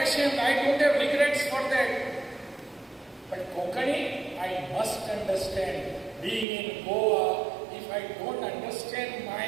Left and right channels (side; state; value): left; drops out; at 6.5 s